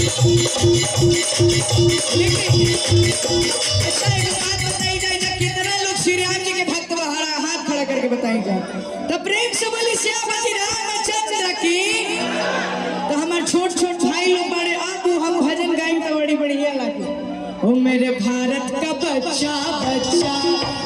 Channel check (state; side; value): identical; both; correlation 1.00